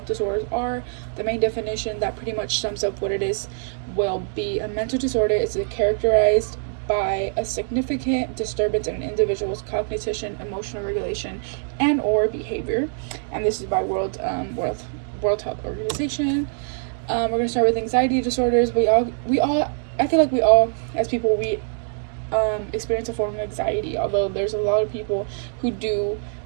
disorders are, the main definition that pretty much sums up what it is will be: a mental disorder is characterized by a significant disturbance in an individual's cognition, emotional regulation, and or behavior. And this is by World Health Organization. We're gonna start with anxiety disorders. I feel like we all, as people, we experience a form of anxiety. Although there's a lot of people who do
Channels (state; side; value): silent; left; 63 dB below the other